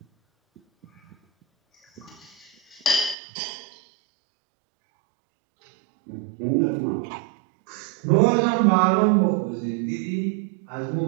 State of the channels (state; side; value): drops out; left; at 3.2 s